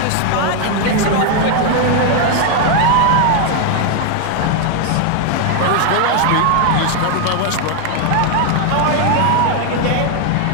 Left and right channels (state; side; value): different; both; correlation 0.00